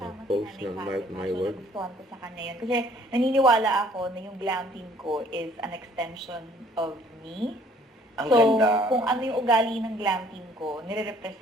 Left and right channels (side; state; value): both; normal; correlation 0.59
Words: Post si ng Nanay Mark Fatima. My So, Word. nagustuhan ko sa kanya yun. Kasi naniniwala ako na yung glam team ko is an extension of me. Ang So, ganda. kung ano yung ugali ng glam team ko,